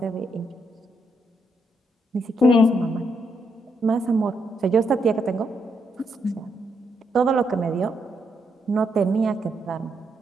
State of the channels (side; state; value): both; normal; correlation 0.78